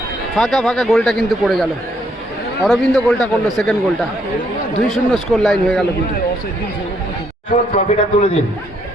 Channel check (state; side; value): normal; both; correlation 0.71